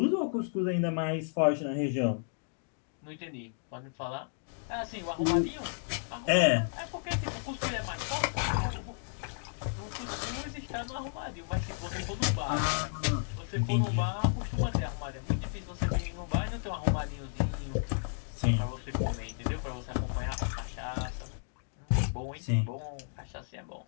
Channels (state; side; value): silent; right; digital silence